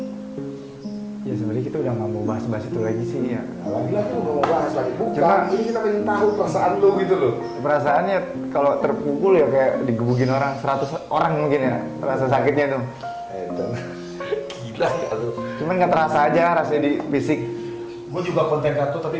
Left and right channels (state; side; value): identical; both; correlation 1.00